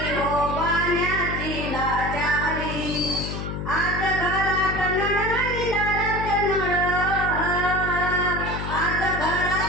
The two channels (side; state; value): left; noise; hum, 5 dB below the sound